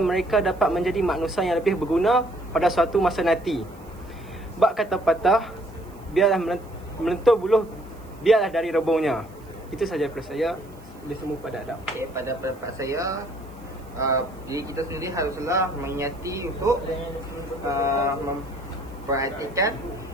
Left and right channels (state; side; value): noise; right; hiss, 28 dB below the sound